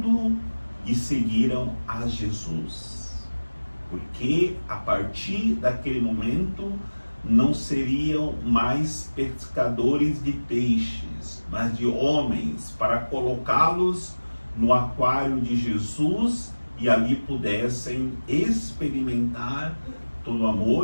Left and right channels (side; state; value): both; inverted; correlation -1.00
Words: e seguiram a Jesus. Porque a partir daquele momento, não seriam mais pescadores de peixes, mas de homens, para colocá-los no aquário de Jesus e ali pudessem experimentar todo o